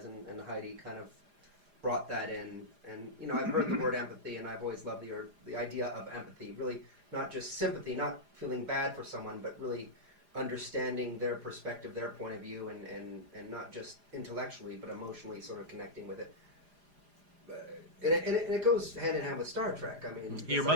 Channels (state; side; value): late; left; 4.9 ms